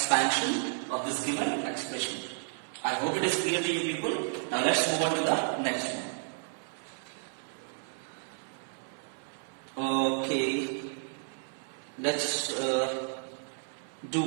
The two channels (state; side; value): silent; left; 56 dB below the other